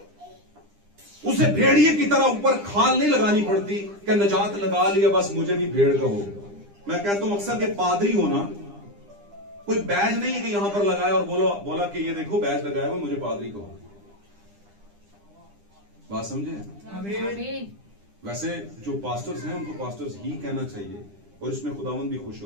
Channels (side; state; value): left; late; 9.9 ms